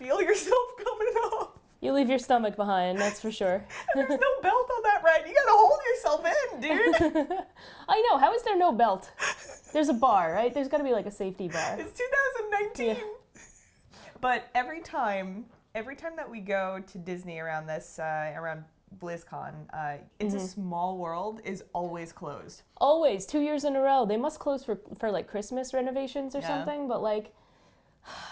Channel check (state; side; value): identical; both; correlation 1.00